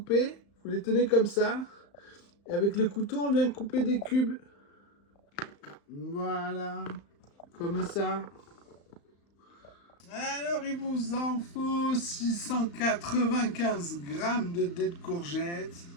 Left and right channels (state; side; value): late; right; 35 ms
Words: Vous les tenez comme ça. Et avec le couteau, on vient couper des cubes. Voilà, comme ça. Alors il vous en faut 695 grammes de dés de courgettes.